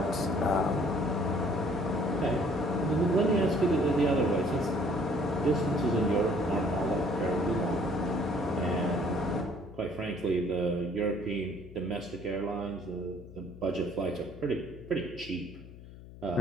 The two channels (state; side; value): noise; left; hum, 17 dB below the sound